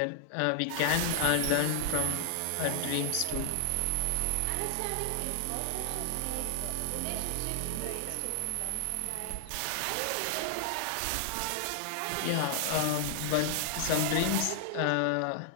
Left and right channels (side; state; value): both; different; correlation 0.00